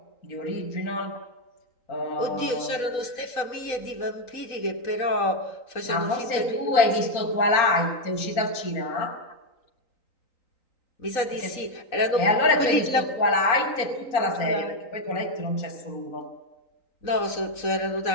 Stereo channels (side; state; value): right; late; 3.9 ms